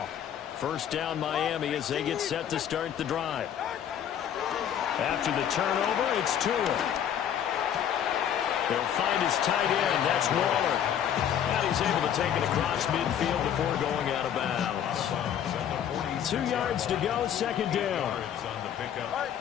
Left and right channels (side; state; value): right; quieter; 9.5 dB